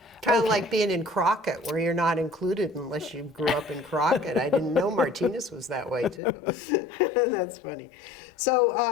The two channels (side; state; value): right; drops out; at 6.2 s